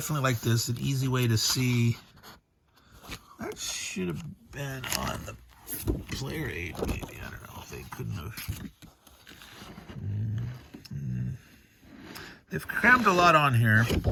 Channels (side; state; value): both; identical; correlation 1.00